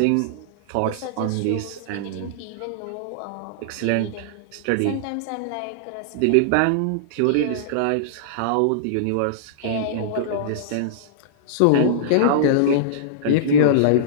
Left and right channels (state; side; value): different; both; correlation -0.02